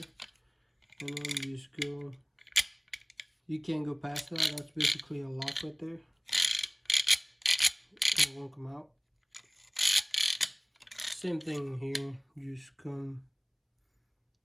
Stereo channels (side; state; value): both; identical; correlation 1.00